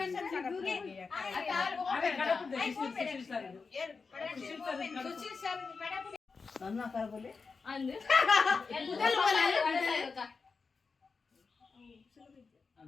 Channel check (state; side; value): quieter; right; 4.7 dB